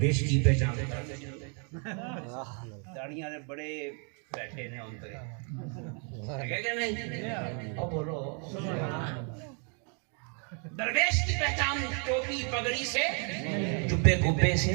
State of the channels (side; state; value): left; quieter; 39.7 dB